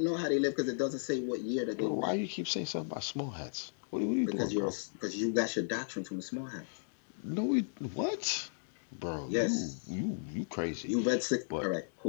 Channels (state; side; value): silent; right; digital silence